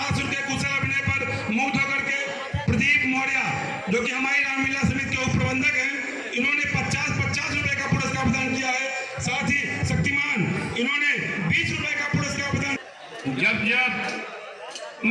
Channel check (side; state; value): both; identical; correlation 1.00